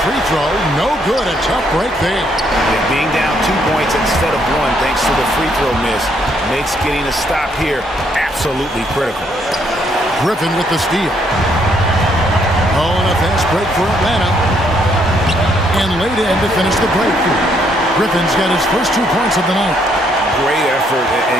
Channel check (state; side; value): normal; both; correlation 0.71